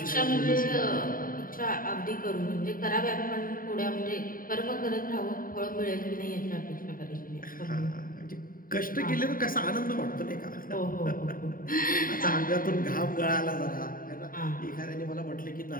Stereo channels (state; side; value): late; right; 0.41 ms